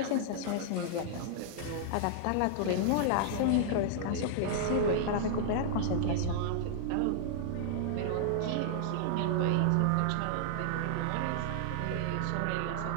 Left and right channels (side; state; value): both; different; correlation -0.01